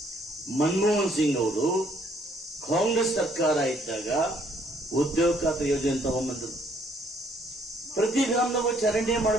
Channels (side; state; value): both; normal; correlation 0.65